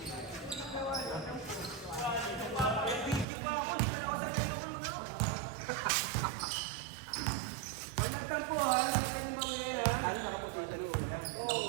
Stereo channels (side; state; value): left; drops out; at 3.2 s